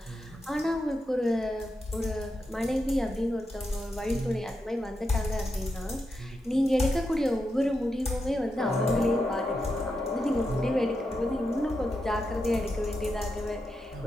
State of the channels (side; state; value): both; normal; correlation 0.86